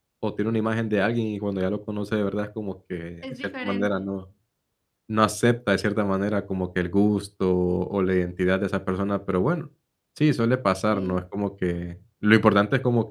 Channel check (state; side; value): identical; both; correlation 1.00